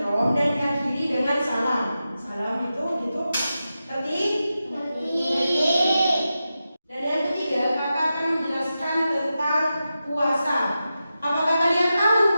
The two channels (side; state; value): both; inverted; correlation -0.91